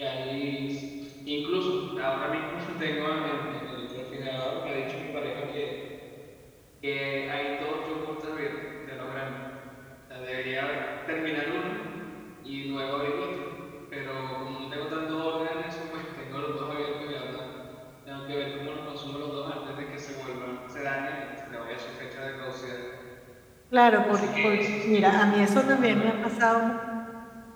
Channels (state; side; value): identical; both; correlation 1.00